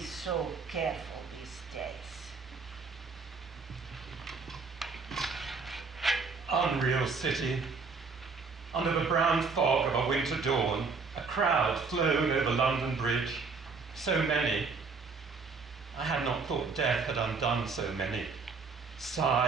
so careful these days. Unreal city. Under the brown fog of a winter dawn, a crowd flowed over London Bridge. So many. I had not thought death had undone so many.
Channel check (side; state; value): left; quieter; 4.7 dB